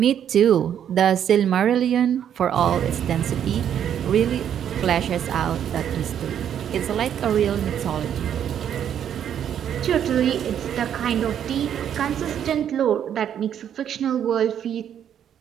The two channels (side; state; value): left; quieter; 9.4 dB